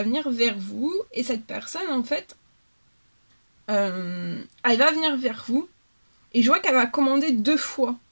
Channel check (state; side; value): inverted; both; correlation -1.00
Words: venir vers vous. Et cette personne, en fait, elle va venir vers vous. Et je vois qu'elle va commander 2 fois.